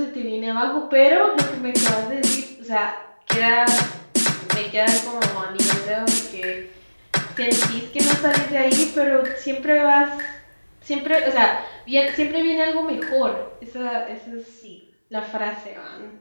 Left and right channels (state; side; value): inverted; both; correlation -1.00